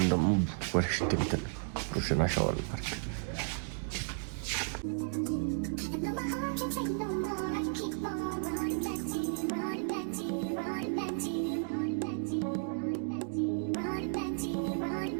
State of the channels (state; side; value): silent; left; digital silence